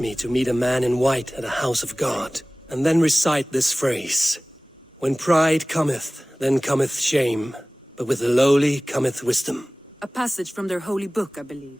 to meet a man in white at a house of God, and then recite this phrase. When pride cometh, then cometh shame, but with the lowly cometh wisdom. A passage from their holy book, I believe.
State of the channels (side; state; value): both; normal; correlation 0.98